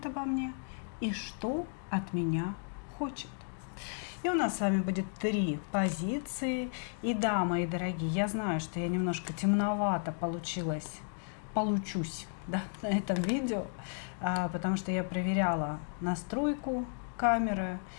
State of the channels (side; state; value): right; silent; 55 dB below the other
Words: обо мне и что от меня хочет?» И у нас с вами будет 3 позиции. И да, мои дорогие, я знаю, что я немножко темновато получусь, да, на этом видео, потому что я проверяла настройку камеры,